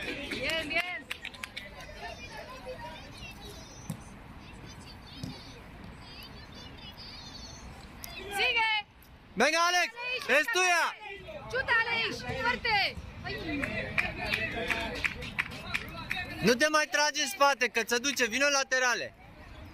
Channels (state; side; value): identical; both; correlation 1.00